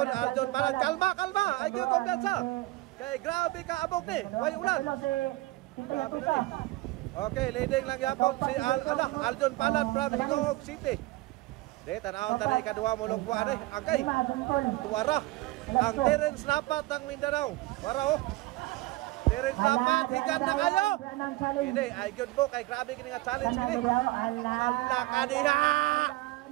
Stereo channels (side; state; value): left; quieter; 19.5 dB